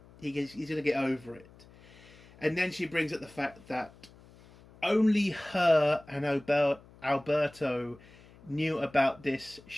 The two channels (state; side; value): noise; left; hum, 24 dB below the sound